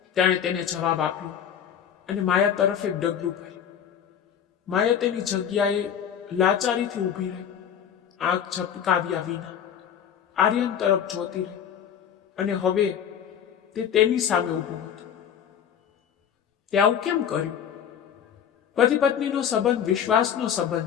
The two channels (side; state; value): right; quieter; 8.7 dB